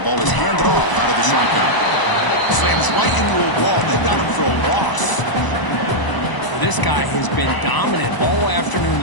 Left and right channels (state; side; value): late; right; 1.0 ms